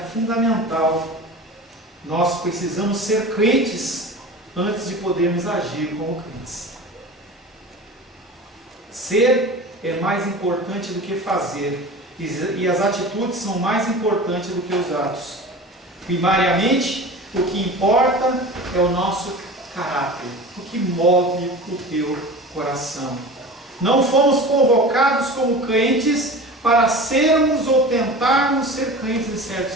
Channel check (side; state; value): both; normal; correlation 0.35